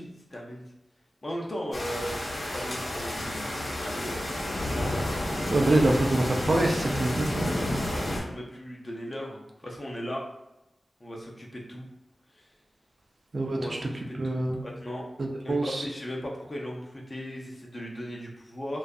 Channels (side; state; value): both; normal; correlation 0.94